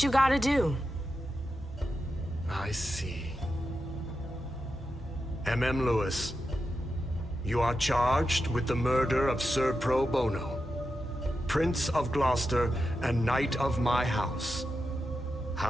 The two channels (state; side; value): normal; both; correlation 0.89